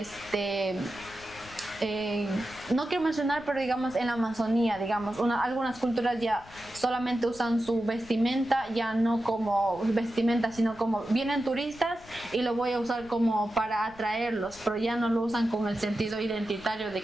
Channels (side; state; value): left; noise; rumble, 21 dB below the sound